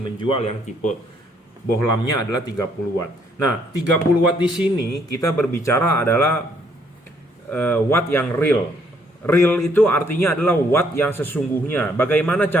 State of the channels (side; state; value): both; normal; correlation 0.68